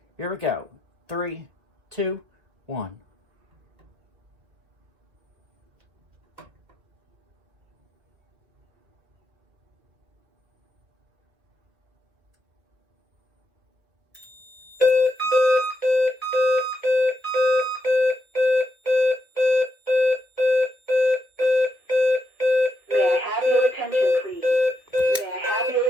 Here we go. 3, 2, 1.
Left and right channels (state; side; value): late; left; 2.1 ms